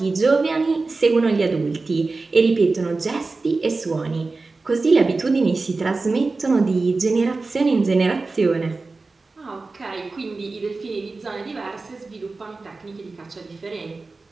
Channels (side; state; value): left; quieter; 3.7 dB